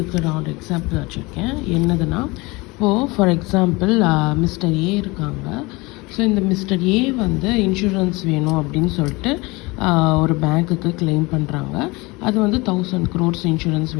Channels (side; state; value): right; quieter; 24.1 dB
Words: நான் ஒரு எக்ஸாம்பிள் வச்சுருக்கேன். என்னதுன்னா, இப்போது ஃபார் எக்ஸாம்பிள் மிஸ்டர் ஏ இருக்காங்க. ஸோ இந்த மிஸ்டர் ஏ இன்சூரன்ஸ் வேணும் அப்படின்னு சொல்லிட்டு ஒரு பேங்க்குக்கு கிளைம் பண்ணுறாங்க. அது 1000 crores இன்சூரன்ஸ்